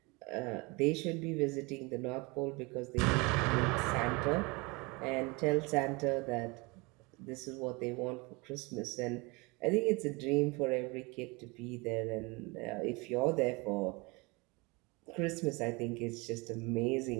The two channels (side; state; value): left; quieter; 26.5 dB